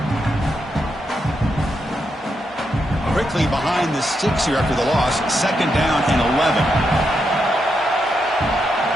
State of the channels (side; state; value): both; normal; correlation 0.83